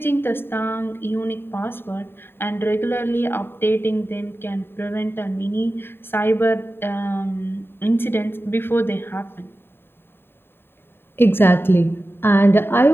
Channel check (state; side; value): late; right; 0.11 ms